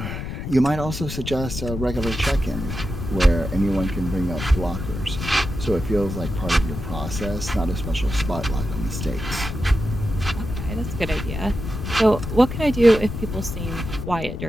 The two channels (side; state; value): left; noise; rumble, 6 dB below the sound